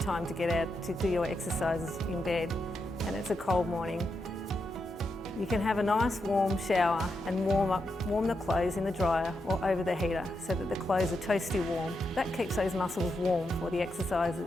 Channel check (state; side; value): normal; both; correlation 0.85